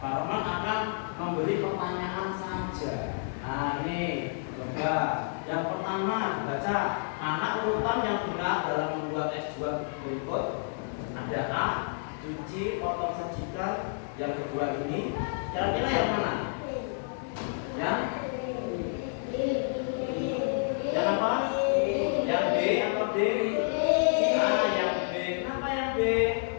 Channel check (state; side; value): silent; right; digital silence